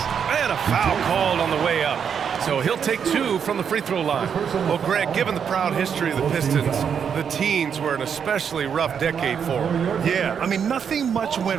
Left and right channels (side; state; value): left; quieter; 7.4 dB